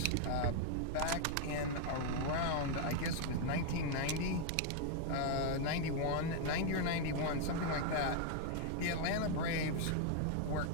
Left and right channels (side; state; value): both; different; correlation 0.00